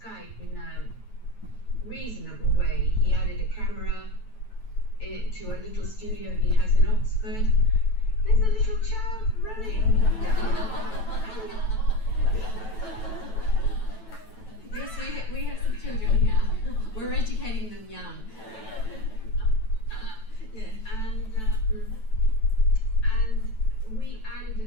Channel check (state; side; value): late; right; 9.1 ms